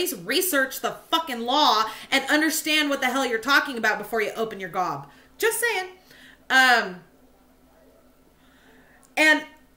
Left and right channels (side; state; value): both; identical; correlation 1.00